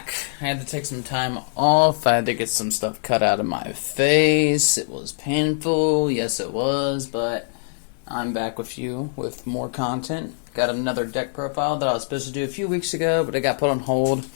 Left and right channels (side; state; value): right; silent; digital silence